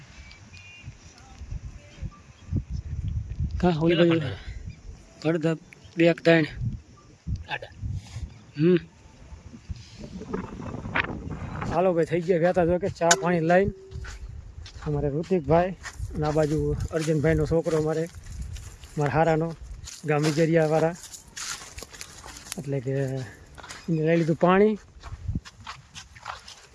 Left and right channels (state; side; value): identical; both; correlation 1.00